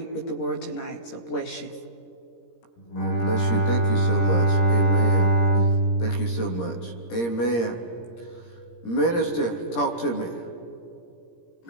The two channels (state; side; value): late; right; 17 ms